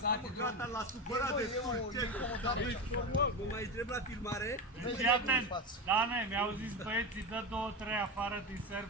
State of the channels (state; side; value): normal; both; correlation 0.19